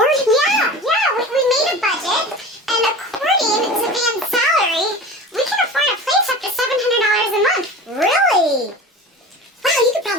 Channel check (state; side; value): normal; both; correlation 0.34